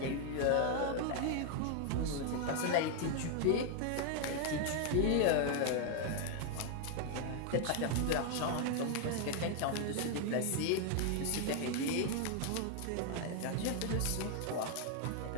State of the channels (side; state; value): both; different; correlation 0.00